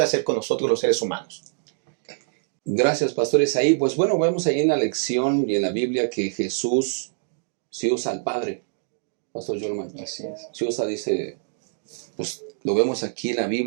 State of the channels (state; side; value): silent; left; digital silence